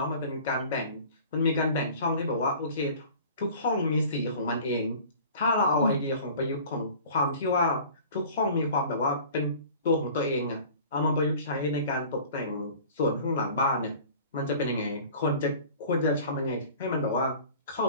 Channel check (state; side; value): inverted; both; correlation -0.44